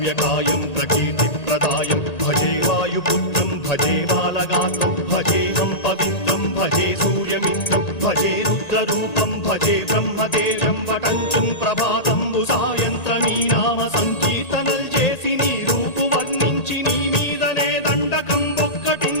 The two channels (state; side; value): late; right; 1.8 ms